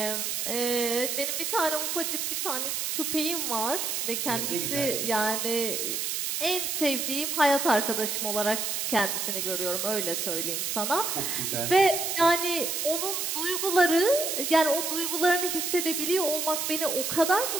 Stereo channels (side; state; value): right; noise; hiss, 1 dB below the sound